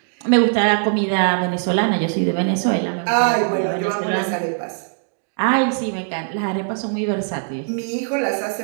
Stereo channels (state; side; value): silent; left; 65 dB below the other